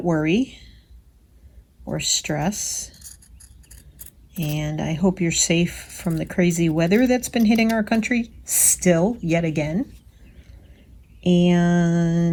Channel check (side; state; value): both; identical; correlation 1.00